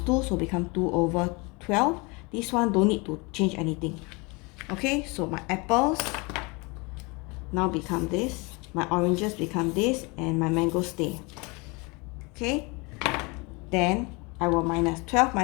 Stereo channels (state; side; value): quieter; right; 27.8 dB